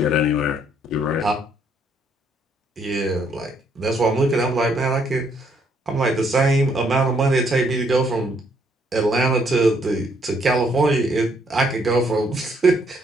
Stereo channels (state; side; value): normal; both; correlation 0.69